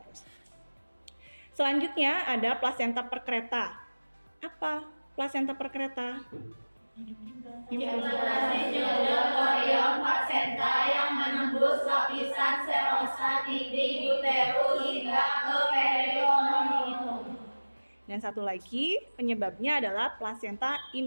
Selanjutnya ada plasenta perkreta. Apa plasenta perkreta? Implantasi jonjot korion plasenta yang menembus lapisan serosa dinding uterus hingga ke peritoneum. Dan satu lagi penyebabnya adalah plasenta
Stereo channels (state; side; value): inverted; both; correlation -1.00